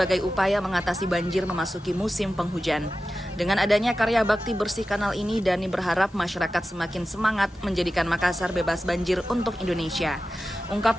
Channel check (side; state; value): both; normal; correlation 0.94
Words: upaya mengatasi banjir memasuki musim penghujan. Dengan adanya karya bakti bersih kanal ini, Dani berharap masyarakat semakin semangat menjadikan Makassar bebas banjir untuk Indonesia.